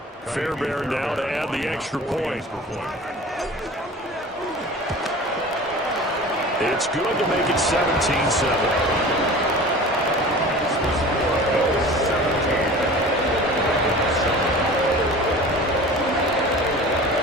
Fairbairn now to add the extra point. It's good to make it 17-7.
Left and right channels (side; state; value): both; normal; correlation 0.39